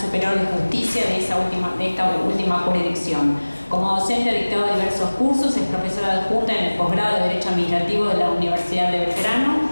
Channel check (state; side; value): inverted; both; correlation -1.00